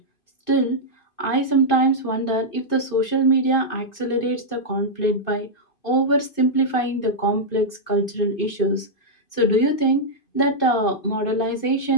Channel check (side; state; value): right; late; 2.5 ms